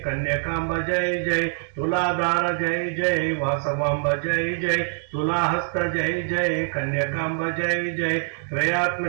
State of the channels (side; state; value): left; silent; 62 dB below the other